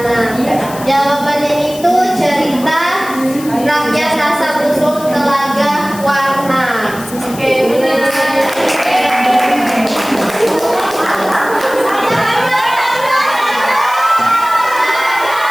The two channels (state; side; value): noise; left; hiss, 15 dB below the sound